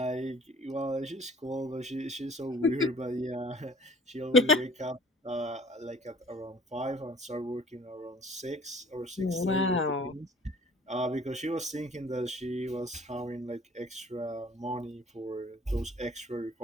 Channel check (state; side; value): normal; both; correlation 0.51